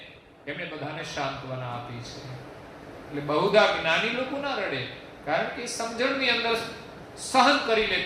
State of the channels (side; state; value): both; identical; correlation 1.00